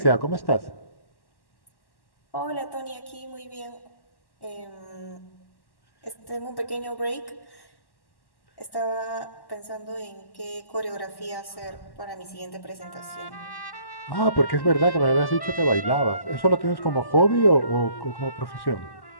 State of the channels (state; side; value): late; right; 1.1 ms